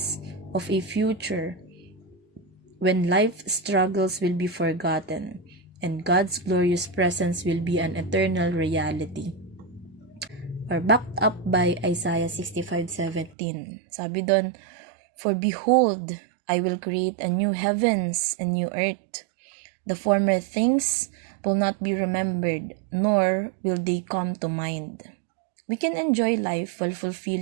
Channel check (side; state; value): left; drops out; at 13.4 s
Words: of a future when life struggles will be forgotten and God's glorious presence will be an eternal reality. Or backed up by Isaiah 65:17. Sabi doon, for behold, I will create a new heavens and new earth. The former things will not be remembered, nor will they come to mind. We can enjoy life while